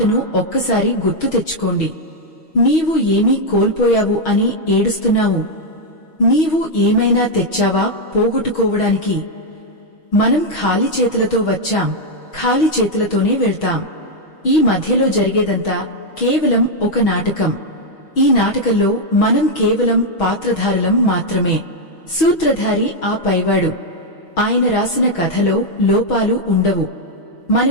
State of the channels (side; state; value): right; late; 6.3 ms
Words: ఒక్కసారి గుర్తు తెచ్చుకోండి. నీవు ఏమీ కోల్పోయావు అని ఏడుస్తున్నావు. నీవు ఏమైనా తెచ్చావా పోగొట్టుకోవడానికి? మనం ఖాళీ చేతులతో వచ్చాం, ఖాళీ చేతులతోనే వెళ్తాం. ఈ మధ్యలో జరిగేదంతా కేవలం ఒక నాటకం. ఈ నాటకంలో మనం కేవలం పాత్రధారులం మాత్రమే. సూత్రధారి ఆ పైవాడు. ఆయన రాసిన కథలో లోపాలు ఉండవు.